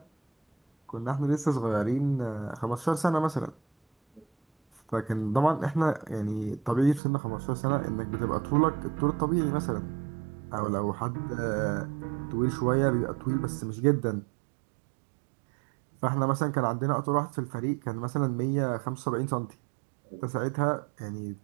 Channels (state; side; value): drops out; left; at 7.0 s